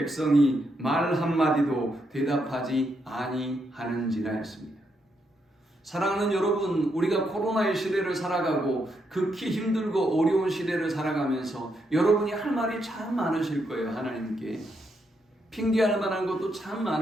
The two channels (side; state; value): both; normal; correlation 0.79